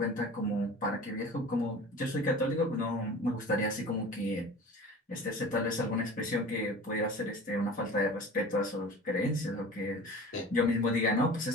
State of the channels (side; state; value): both; normal; correlation 0.39